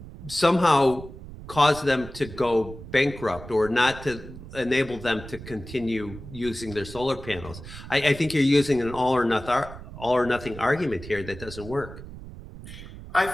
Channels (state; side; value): noise; right; rumble, 14 dB below the sound